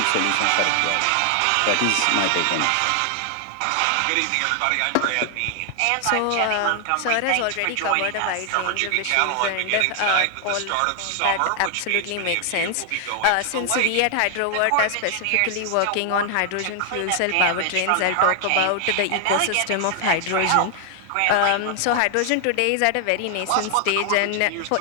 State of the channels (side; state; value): both; different; correlation 0.00